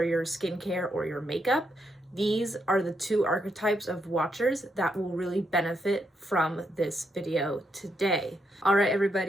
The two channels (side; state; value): both; normal; correlation 0.79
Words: your skincare or your makeup. These are the two archetypes of watchers that will really benefit from this video today. All right,